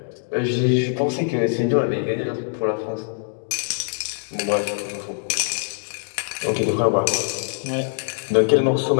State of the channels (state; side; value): silent; right; digital silence